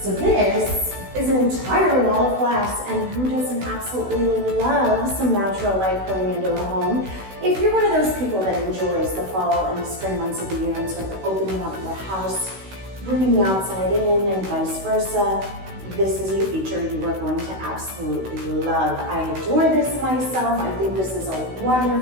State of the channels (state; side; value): late; left; 16 ms